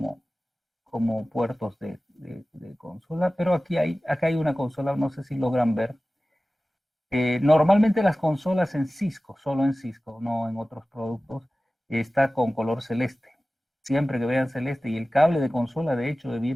puertos de consola, pero acá hay una consola, no sé si logran ver. Normalmente las consolas en Cisco, solo en Cisco, no en otros productos, está con color celeste. Siempre que vean celeste, y el cable de consola de hecho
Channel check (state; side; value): normal; both; correlation 0.97